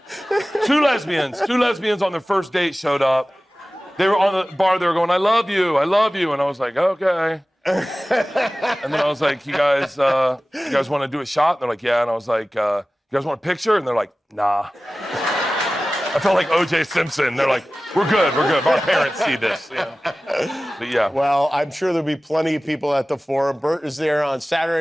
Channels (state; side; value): normal; both; correlation 0.97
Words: Two lesbians on their first date showed up. They were on the bar, they were going, I love you. And I was like, okay. And then I was like, you guys want to do a shot? And they're like, yeah. And I was like, you guys want a picture? And they're like, nah. I felt like O.J. Simpson. They're like, we're good. Our parents see this. Yeah. But yeah. Well, I'm sure there'll be plenty of people at the Forum. Bert is there on